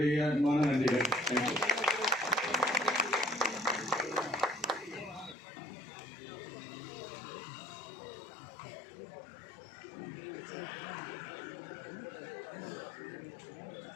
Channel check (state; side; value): drops out; right; at 5.4 s